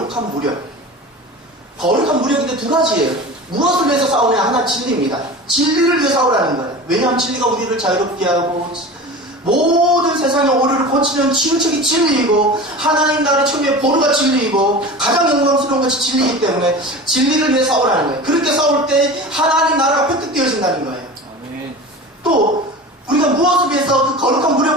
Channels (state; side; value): normal; both; correlation 0.33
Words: 무력. 거룩한 무력인데 2가지예요. 무엇을 위해서 싸우냐? 하나 진리입니다. 진리를 위해 싸우라는 거예요. 왜냐하면 진리가 우리를 자유롭게 하고 모든 세상의 오류를 고치는 치유책이 진리이고 하나님 나라의 처음에 보루가 진리이고 가장 영광스러운 것이 진리이기 때문에 진리를 위해 싸우라는 거예요. 그렇게 싸울 때 하나님 나라가 획득되어진다는 거예요. 아멘. 우리가 무엇을 위해서 그 거룩한